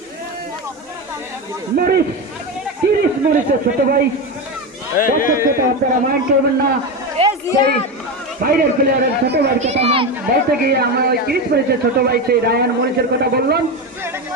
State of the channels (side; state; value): both; normal; correlation 0.17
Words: মরিস, 30 মরিসের ছোট ভাই। দর্শক শ্রোতা, আপনারা মাইন্ড করবেন না, সেই বাইরের প্লেয়ারের ছোট ভাইয়ের কথা বলতে গিয়ে আমরা ওই 30 মরিসের ছোট ভাই সেই রায়হান মরিসের কথা বললাম।